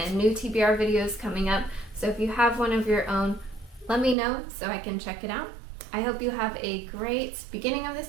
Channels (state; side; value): drops out; left; at 4.2 s